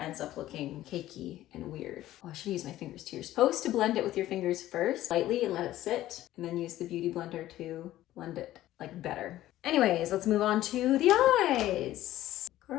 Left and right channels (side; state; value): right; quieter; 14.5 dB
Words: up looking cakey and weird. Oh, I should use my fingers too. You're supposed to blend it with your fingers first, lightly, and let it sit, and then use the Beauty Blender to blend it like better. Anyways, let's move on to the eyes.